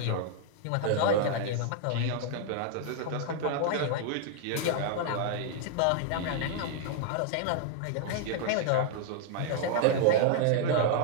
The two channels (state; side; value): different; both; correlation 0.00